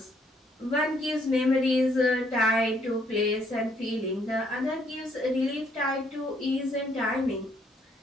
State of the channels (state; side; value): normal; both; correlation 0.68